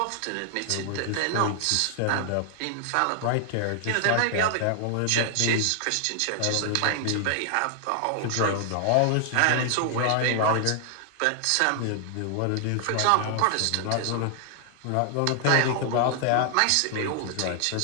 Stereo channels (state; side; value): different; both; correlation 0.00